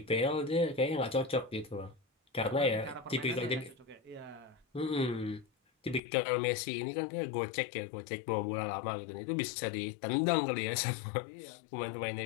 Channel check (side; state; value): right; drops out; at 6.0 s